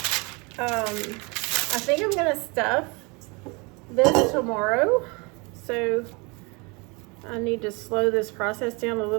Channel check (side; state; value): left; quieter; 29.0 dB